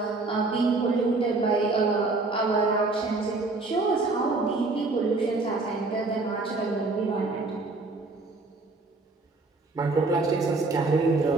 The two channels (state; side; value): quieter; left; 3.5 dB